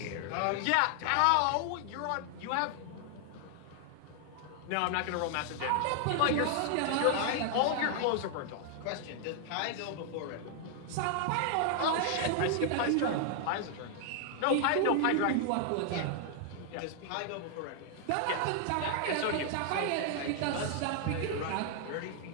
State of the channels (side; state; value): both; different; correlation 0.00